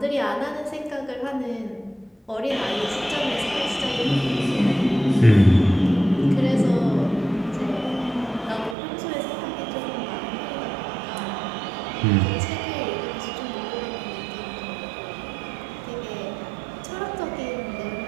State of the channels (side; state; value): left; drops out; at 8.8 s